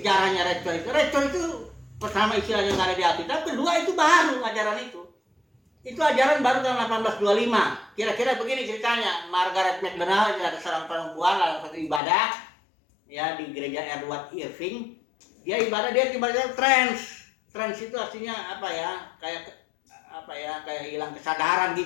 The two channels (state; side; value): drops out; right; at 12.0 s